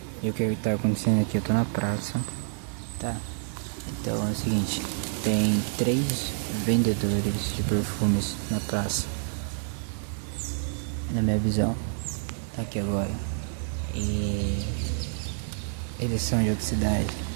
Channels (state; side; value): silent; left; digital silence